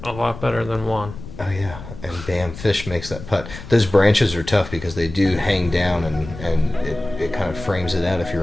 a lot better than 1. Oh yeah, and bam, Fish makes that putt. Those branches are tough because they do hang down, and it kind of frames it out if you're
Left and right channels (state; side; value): noise; left; rumble, 13 dB below the sound